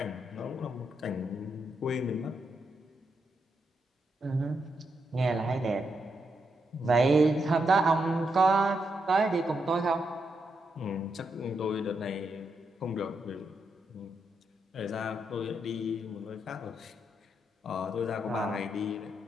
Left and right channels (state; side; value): normal; both; correlation 0.81